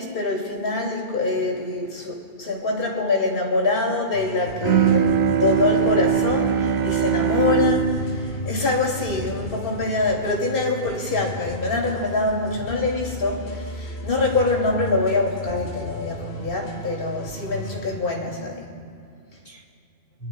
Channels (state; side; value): late; right; 2.6 ms